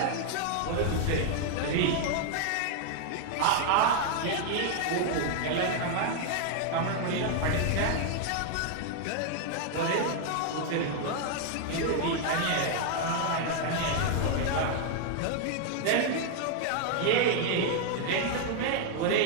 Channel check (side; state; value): both; different; correlation 0.00